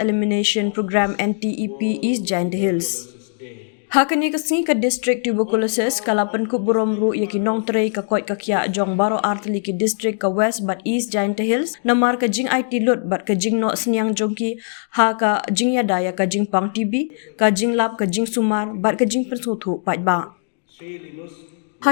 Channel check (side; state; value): right; silent; digital silence